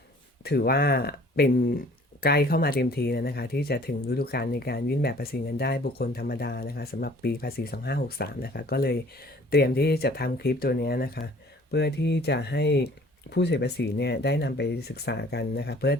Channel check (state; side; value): normal; both; correlation 0.53